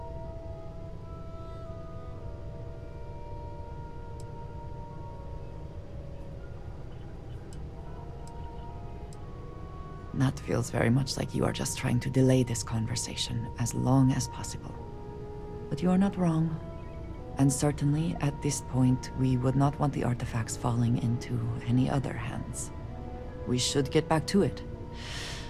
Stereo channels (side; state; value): both; identical; correlation 1.00